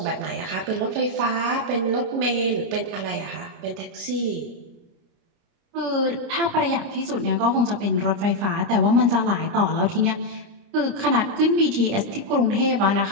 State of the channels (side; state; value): left; late; 29 ms